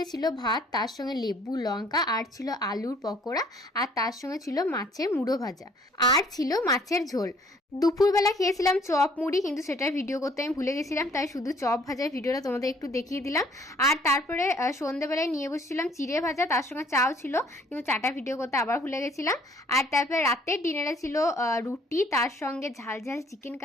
ছিল ভাত, তার সঙ্গে লেবু লঙ্কা, আর ছিল আলুর পকোড়া, আর তার সঙ্গে ছিল মাছের মুড়ো ভাজা, আর ছিল মাছের ঝোল। দুপুরবেলা খেয়েছিলাম চপ মুড়ি, কিন্তু সেটার ভিডিও করতে আমি ভুলে গেছিলাম, তাই শুধু চপ ভাজার ভিডিওটা তোমাদের একটু দেখিয়ে দিলাম। আর তারপরে সন্ধ্যেবেলায় নিয়ে বসেছিলাম চিড়ে ভাজা, তার সঙ্গে চাও ছিল, কিন্তু চাটা ভিডিও করতে আবার ভুলে গেছিলাম। আর তারপরে রাতের ডিনারে ছিল রুটি, তার সঙ্গে ঝাল ঝাল চিকেন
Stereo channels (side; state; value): both; normal; correlation 0.60